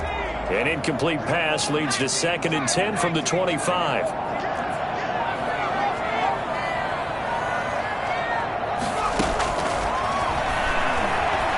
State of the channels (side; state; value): both; identical; correlation 1.00